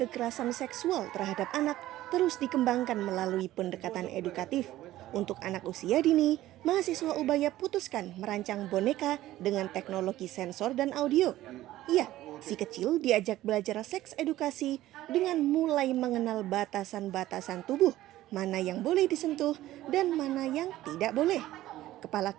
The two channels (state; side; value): quieter; left; 15.0 dB